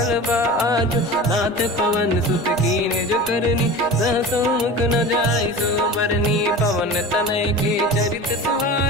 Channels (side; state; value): both; normal; correlation 0.34